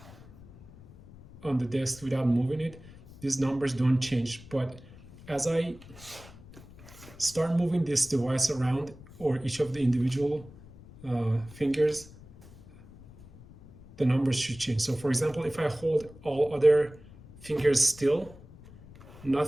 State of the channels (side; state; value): left; noise; rumble, 20 dB below the sound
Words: the desk without moving it, these numbers don't change. But as I start moving this device around, or each of the individual fingers, the numbers should change. So for example, if I hold all other fingers still, none